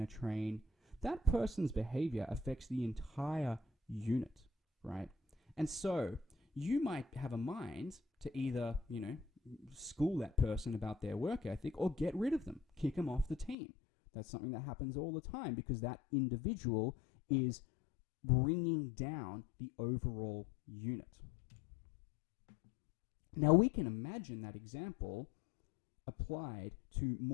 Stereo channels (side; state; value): right; drops out; at 13.6 s